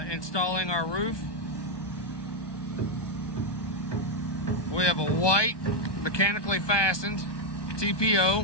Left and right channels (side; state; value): right; late; 1.2 ms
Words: installing our roof. We have a white mechanically fastened